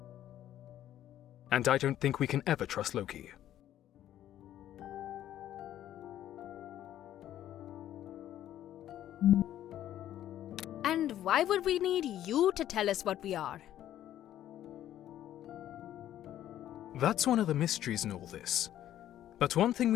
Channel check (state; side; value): quieter; right; 12.1 dB